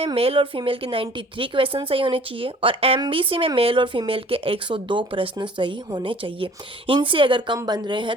मेल और फीमेल के 93 क्वेश्चन सही होने चाहिए, और एमबीसी में मेल और फीमेल के 102 प्रश्न सही होने चाहिए। इनसे अगर कम बन रहे हैं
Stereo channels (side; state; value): both; normal; correlation 0.51